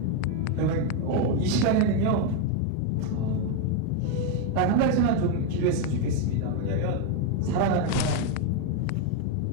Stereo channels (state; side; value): different; both; correlation 0.01